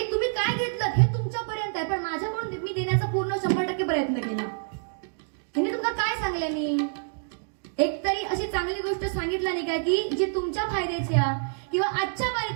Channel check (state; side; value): silent; left; digital silence